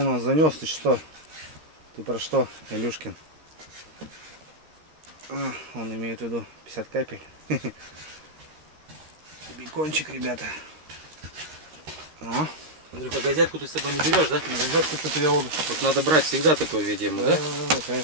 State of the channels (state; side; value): late; left; 13 ms